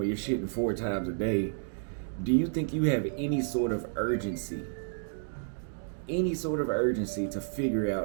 you're shitting 4 times a day, do you think you have any sort of urgency? Any sort of urgency to figure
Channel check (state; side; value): silent; left; digital silence